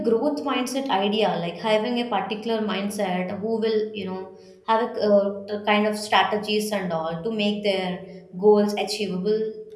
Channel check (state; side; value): identical; both; correlation 1.00